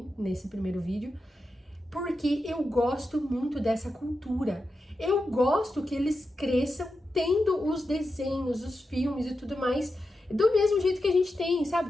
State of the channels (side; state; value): both; normal; correlation 0.89